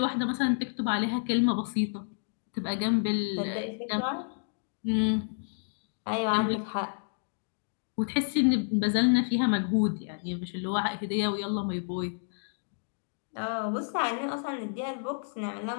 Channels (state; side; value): silent; right; digital silence